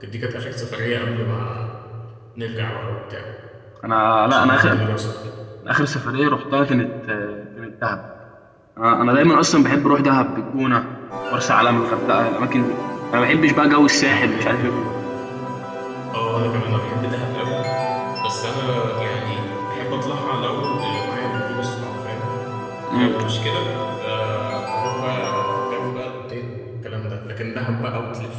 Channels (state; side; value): identical; both; correlation 1.00